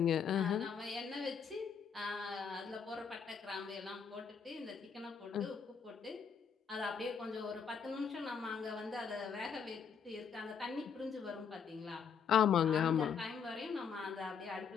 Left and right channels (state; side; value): quieter; right; 6.8 dB